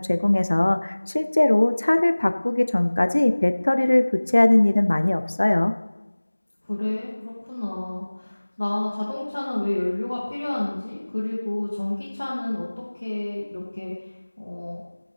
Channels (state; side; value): inverted; both; correlation -1.00